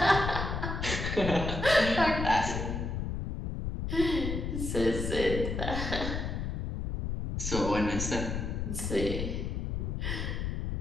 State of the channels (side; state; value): left; noise; rumble, 3 dB below the sound